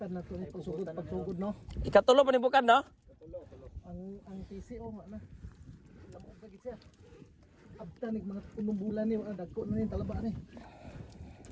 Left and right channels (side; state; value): both; identical; correlation 1.00